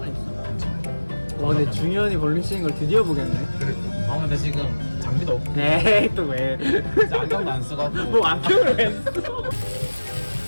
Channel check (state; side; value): inverted; both; correlation -1.00